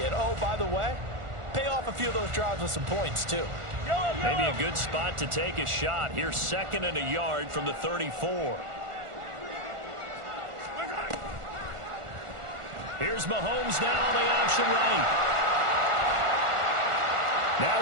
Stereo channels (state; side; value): late; left; 1.4 ms